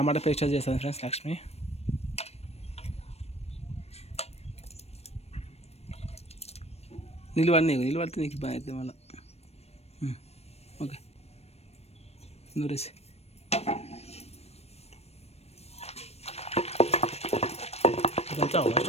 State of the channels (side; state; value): right; late; 0.31 ms